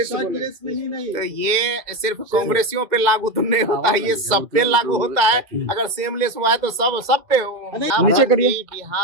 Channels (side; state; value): left; late; 2.0 ms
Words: नहीं। तो ये सिर्फ कांग्रेसियों पे लागू तो नहीं होता है, ये सब पे लागू होता है। अगर सेमलेस हुआ है तो सब पे नीचे करिए।